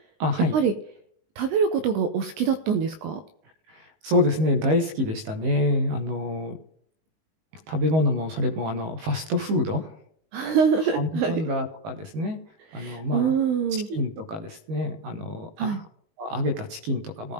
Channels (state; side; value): late; left; 19 ms